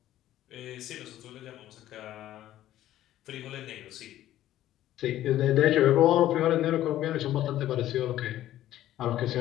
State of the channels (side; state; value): right; quieter; 13.3 dB